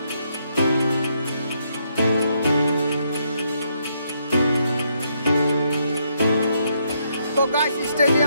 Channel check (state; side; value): inverted; both; correlation -0.75